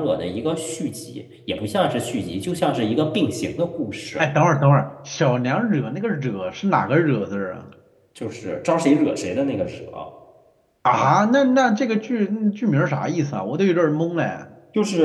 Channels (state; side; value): identical; both; correlation 1.00